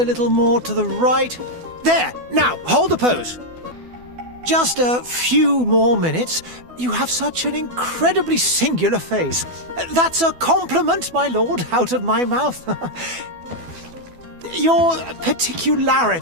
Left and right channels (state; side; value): late; left; 12 ms